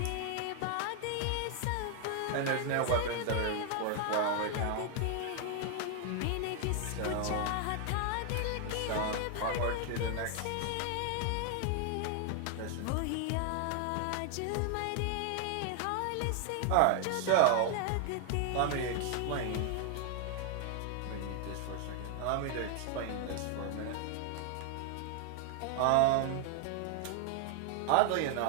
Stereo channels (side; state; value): both; different; correlation 0.00